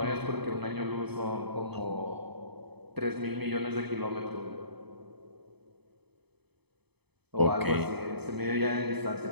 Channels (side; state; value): left; late; 0.98 ms